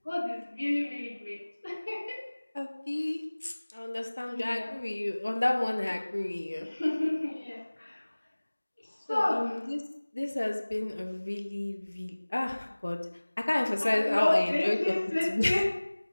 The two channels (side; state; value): both; inverted; correlation -1.00